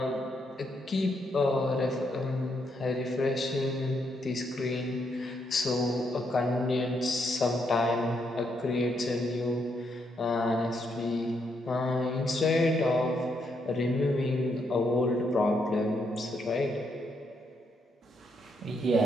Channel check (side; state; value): both; normal; correlation 0.77